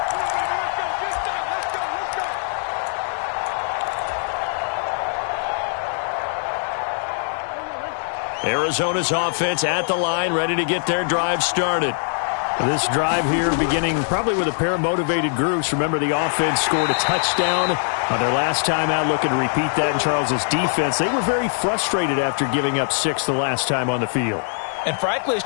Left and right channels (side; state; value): right; silent; digital silence